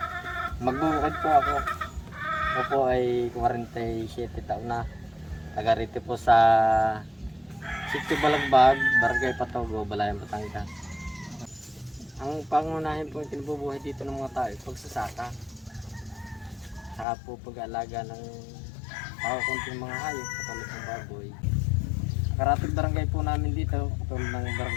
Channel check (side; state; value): right; drops out; at 17.1 s